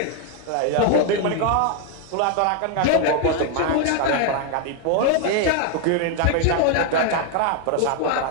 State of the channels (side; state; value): both; different; correlation 0.00